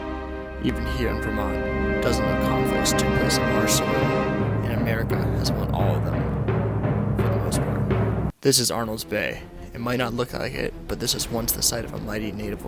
Even here in Vermont, dozens of conflicts took place on our soil, and America has won all of them, for the most part. This is Arnold's Bay. It might not look like it, but this was once the site of a mighty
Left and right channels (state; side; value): identical; both; correlation 1.00